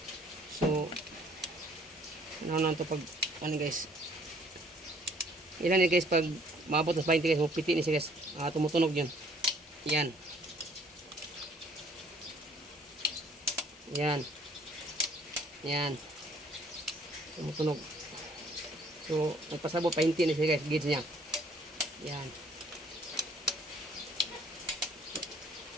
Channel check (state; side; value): normal; both; correlation 0.60